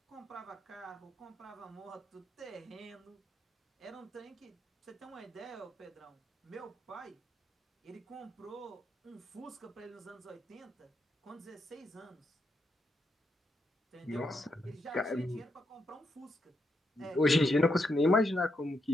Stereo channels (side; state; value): both; normal; correlation 0.81